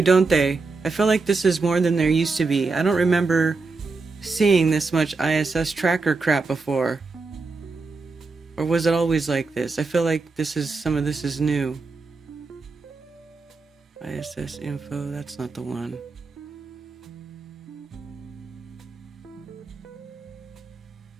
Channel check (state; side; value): quieter; left; 4.0 dB